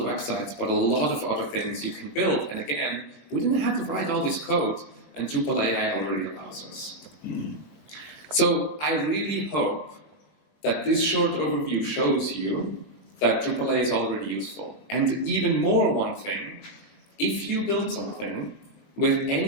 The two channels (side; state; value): right; late; 20 ms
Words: websites, but a lot of other things you can build. And again, we didn't have to write all this code, and Drupal AI already allows us. So I really hope that this short overview shows you that Drupal AI is already useful. And even more, one thing, if you build something with